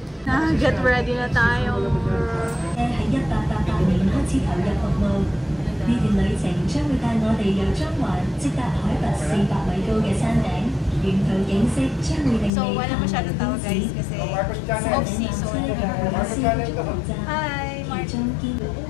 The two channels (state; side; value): drops out; right; at 12.5 s